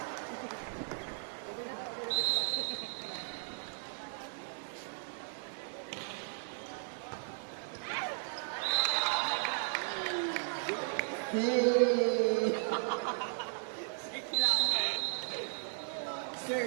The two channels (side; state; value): left; silent; digital silence